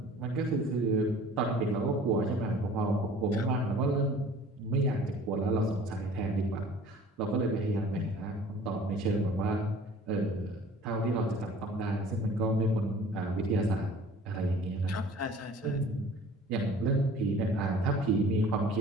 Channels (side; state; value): both; normal; correlation 0.48